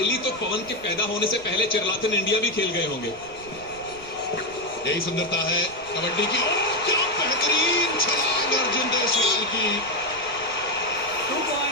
तो पवन के पैदा होने से पहले चिरलाथन इंडिया भी खेल गए होंगे। यही सुंदरता है कबड्डी की। क्या बेहतरीन छलांग अर्जुन देसवाल की। 2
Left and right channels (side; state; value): right; noise; rumble, 20 dB below the sound